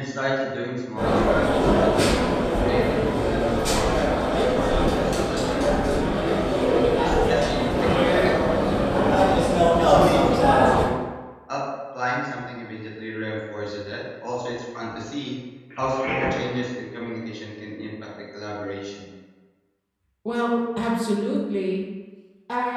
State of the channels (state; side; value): identical; both; correlation 1.00